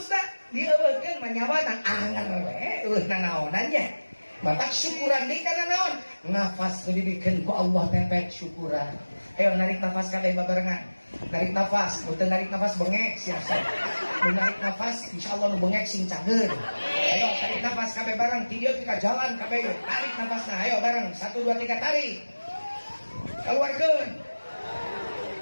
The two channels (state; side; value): inverted; both; correlation -1.00